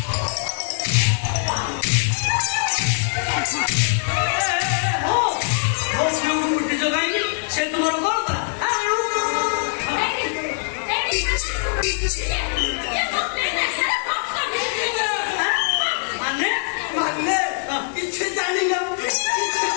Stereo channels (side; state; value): right; silent; digital silence